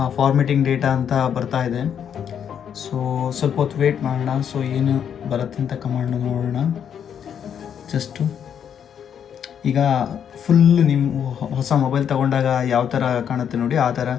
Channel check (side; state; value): right; quieter; 8.4 dB